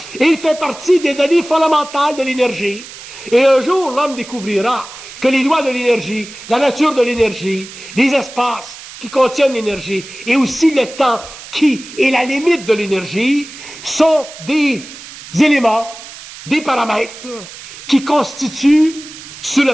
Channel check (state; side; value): noise; right; hiss, 15 dB below the sound